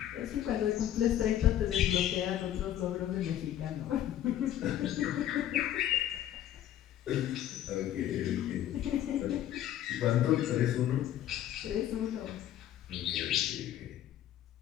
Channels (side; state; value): right; quieter; 11.7 dB